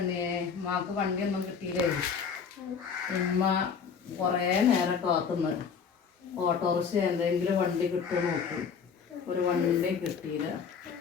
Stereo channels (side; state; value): right; quieter; 6.4 dB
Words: ഉമ്മാക്ക് വണ്ടിയൊന്നും കിട്ടിയില്ലേ. ഉമ്മ കുറേ നേരം കാത്തുന്ന് ഓട്ടോറിക്ഷ എന്തെങ്കിലും വണ്ടി കിട്ടുമോ നോക്കി. ഒരു വണ്ടി കിട്ടിയില്ല.